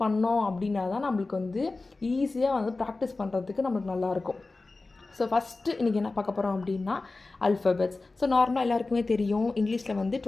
பண்ணோம் அப்படின்னா தான் நம்மளுக்கு வந்து ஈஸியாக வந்து ப்ராக்டிஸ் பண்ணுறதுக்கு நம்மளுக்கு நல்லாயிருக்கும். ஸோ ஃபஸ்ட்டு இன்றைக்கி என்ன பார்க்க போகிறோம் அப்படின்னா அல்ஃபபெட்ஸ். ஸோ நார்மலாக எல்லாருக்குமே தெரியும், இங்கிலீஷில் வந்து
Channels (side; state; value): right; quieter; 3.5 dB